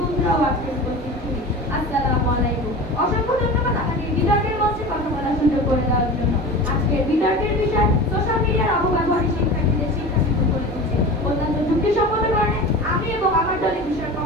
আজকে উপস্থিত ছিলেন, আসসালামু আলাইকুম। অসংখ্য ধন্যবাদ আমাকে বিতর্কের মঞ্চে কথা বলার সুযোগ করে দেওয়ার জন্য। আজকের বিতর্কের বিষয় সোশ্যাল মিডিয়ার অপব্যবহারে শিক্ষার্থীদের শিক্ষা বিমুখ করে দিচ্ছে। অত্যন্ত যুক্তিসম্মত কারণে আমি এবং আমার দলের বিষয়ের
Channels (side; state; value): both; normal; correlation 0.33